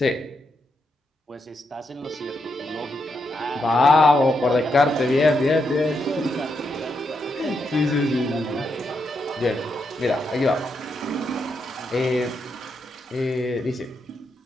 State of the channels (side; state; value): both; normal; correlation 0.81